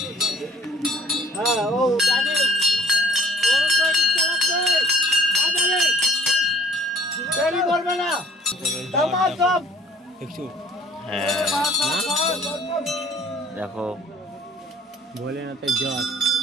দেখো ভোলেনাথের জট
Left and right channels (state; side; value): normal; both; correlation 0.56